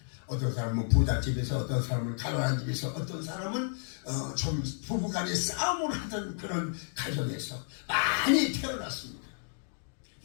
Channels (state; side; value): silent; right; 57 dB below the other